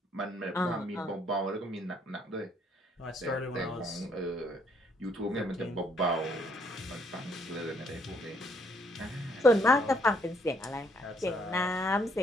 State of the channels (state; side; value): normal; both; correlation 0.68